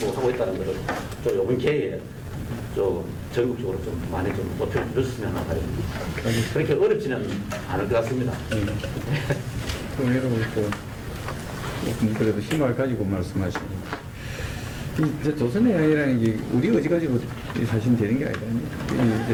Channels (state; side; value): identical; both; correlation 1.00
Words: 하고 있다는 것을 좀 이번 기회에 좀 전국적으로 좀 많이 좀 높여 주셨으면 하는 바람입니다. 그렇게 어렵지는 않을 것 같습니다. 그럼 여러분 그래도 희망을 가지고 말씀하시고 이제 조선의 양이라는 게 우리 의지 가지고 사실 되는 게 아니라